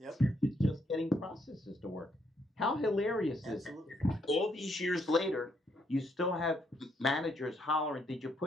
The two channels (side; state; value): both; normal; correlation 0.73